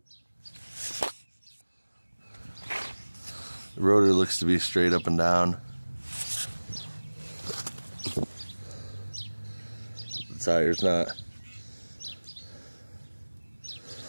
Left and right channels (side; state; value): both; inverted; correlation -1.00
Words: The rotor looks to be straight up and down. The tire's not.